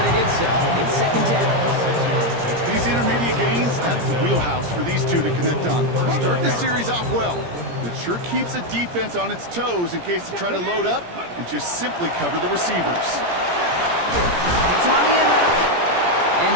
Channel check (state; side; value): late; left; 17 ms